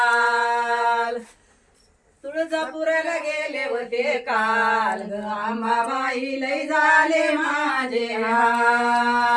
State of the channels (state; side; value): identical; both; correlation 1.00